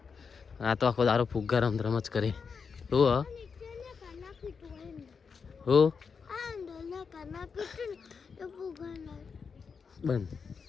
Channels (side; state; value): right; quieter; 5.7 dB